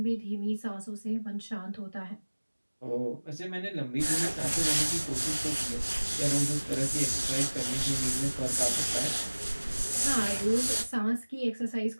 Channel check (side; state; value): both; inverted; correlation -1.00